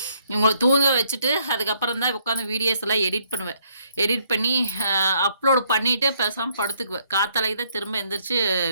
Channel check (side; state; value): both; inverted; correlation -0.70